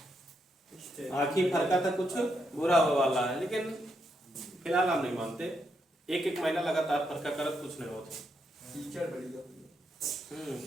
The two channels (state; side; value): normal; both; correlation 0.80